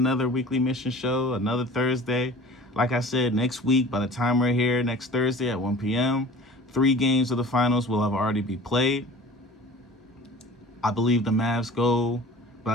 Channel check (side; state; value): both; normal; correlation 0.44